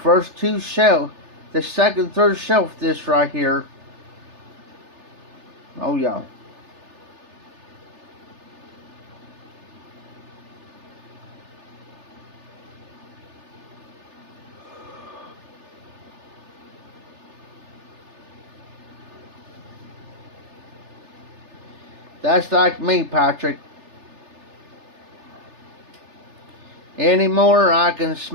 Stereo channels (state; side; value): late; left; 3.3 ms